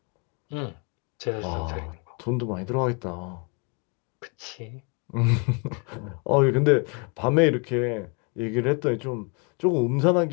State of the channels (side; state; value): right; quieter; 33.8 dB